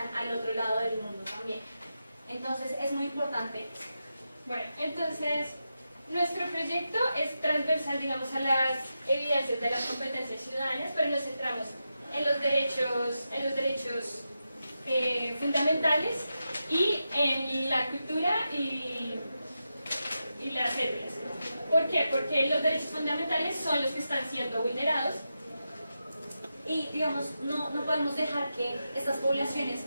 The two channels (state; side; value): inverted; both; correlation -0.89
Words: al otro lado del mundo también. Entonces, es muy importante. Bueno, entonces nuestro proyecto es transversal, digamos, a las evidencias de las competencias ciudadanas, pero nos centramos en los derechos fundamentales y en la cultura y las etnias. ¿Por qué? Porque los derechos fundamentales son los que están siendo vulnerados y digamos, no podemos dejar que estas poblaciones